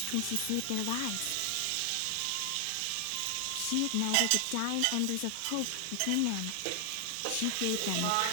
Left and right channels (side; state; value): both; different; correlation 0.00